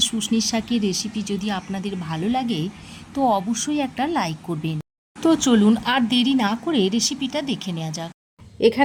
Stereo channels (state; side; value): identical; both; correlation 1.00